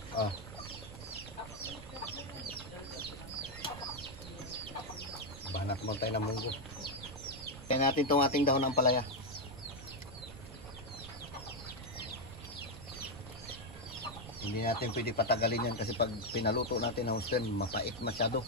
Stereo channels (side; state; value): right; noise; rumble, 13 dB below the sound